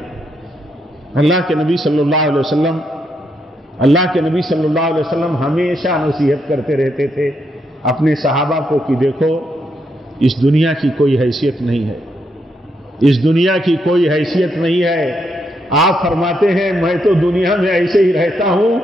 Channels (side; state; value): both; normal; correlation 0.79